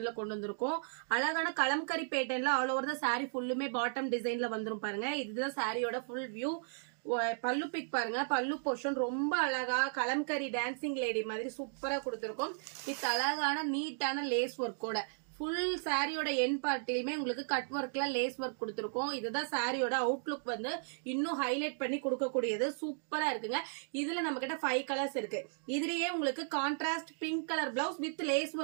கொண்டு வந்திருக்கும். அழகான கலம்கரி பேட்டர்ன்ல ஆல் ஓவர் த சாரி ஃபுல்லுமே பாட்டம் டிசைன்ல வந்துரும் பாருங்க. இதுதான் சாரியோட ஃபுல் வியூ. பல்லு பிக் பாருங்க, பல்லு போர்ஷன் ரொம்ப அழகா கலம்கரி டான்சிங் லேடி மாதிரி சூப்பரா கொடுத்திருக்கும். வித் அழகான நீட்டான லேஸ் ஒர்க்கோட ஃபுல் சாரியோட என் பார்ட்டிலுமே உங்களுக்கு கட் ஒர்க்ல லேஸ் ஒர்க் கொடுத்துருக்கோம். இதுதான் சாரியோட அவுட்லுக் வந்து இன்னும் ஹைலைட் பண்ணி கொடுக்கக்கூடியது. சூப்பரா இருக்குங்க. இதுல நம்ம கிட்ட 5 கலர்ஸ் இருக்கு. இதுலயே உங்களுக்கு contrast pink colour blouse with lace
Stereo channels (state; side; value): silent; left; digital silence